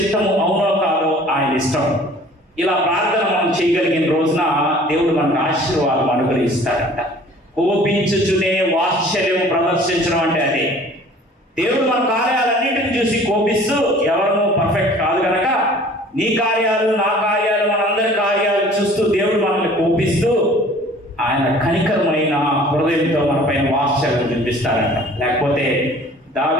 అవునో కాదో ఆయన ఇష్టం. ఇలా ప్రార్థన మనం చేయగలిగిన రోజున దేవుడు మనకు ఆశీర్వాదం అనుగ్రహిస్తాడంట. కోపించుచునే వాత్సల్యం ప్రదర్శించడం అంటే అదే. దేవుడు మన కార్యాలన్నింటిని చూసి కోపిస్తూ, ఎవరు పర్ఫెక్ట్ కాదు కనుక నీ కార్యాలు, నా కార్యాలు, మనందరి కార్యాలు చూస్తూ దేవుడు మనల్ని కోపిస్తూ ఆయన కనికరమైన హృదయంతో మన పైన వాత్సల్యం చూపిస్తారంట. లేకపోతే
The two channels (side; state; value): both; normal; correlation 0.49